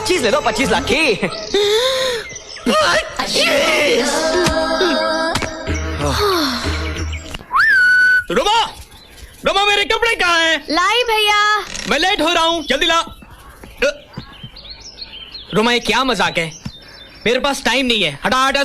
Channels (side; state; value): both; identical; correlation 1.00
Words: ले लो, 25 लाख की। रुमा, रुमा मेरे कपड़े कहाँ हैं? लाई भैया। मैं लेट हो रहा हूँ, जल्दी ला। रुमा ये क्या मजाक है? मेरे पास टाइम नहीं है, हटा हटा